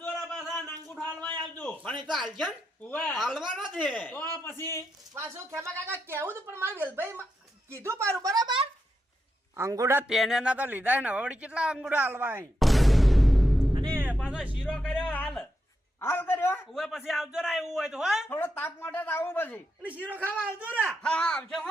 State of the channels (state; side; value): normal; both; correlation 0.84